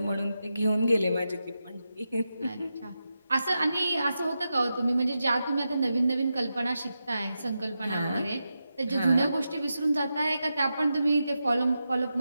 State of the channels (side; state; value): both; inverted; correlation -0.89